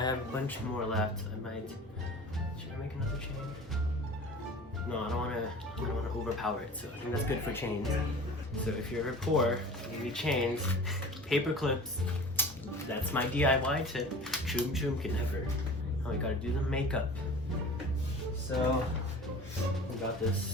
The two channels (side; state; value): both; normal; correlation 0.40